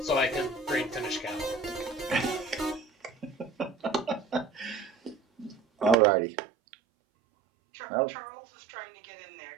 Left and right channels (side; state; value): left; drops out; at 6.0 s